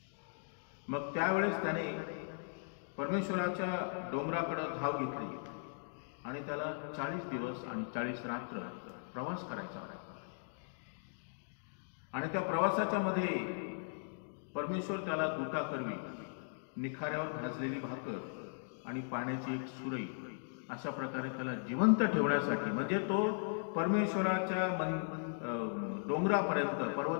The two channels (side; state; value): right; silent; digital silence